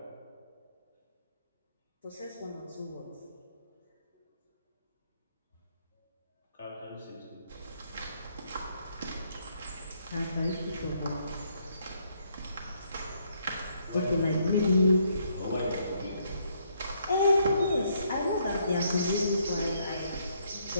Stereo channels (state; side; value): inverted; both; correlation -0.71